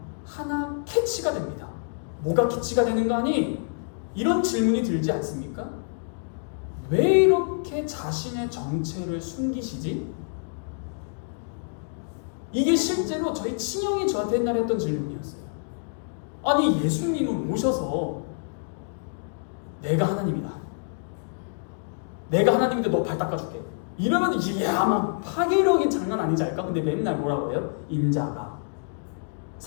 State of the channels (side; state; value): right; silent; digital silence